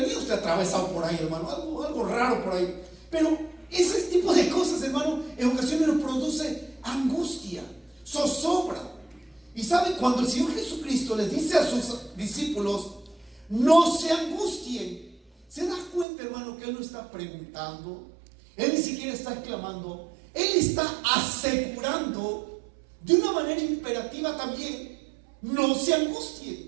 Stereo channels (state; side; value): drops out; left; at 16.1 s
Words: usted atravesado por ahí, hermano, algo raro por ahí. Pero ese tipo de cosas, hermano, en ocasiones nos produce angustia, zozobra. Y sabe, cuando el Señor Jesucristo les dice a sus discípulos: no se angustien, se da cuenta, hermano, que Él no está preguntando, Él ni siquiera está exclamando, Él está asegurando de una manera imperativa también: no se